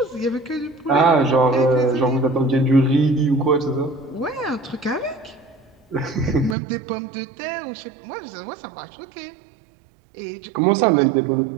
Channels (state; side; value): drops out; left; at 6.6 s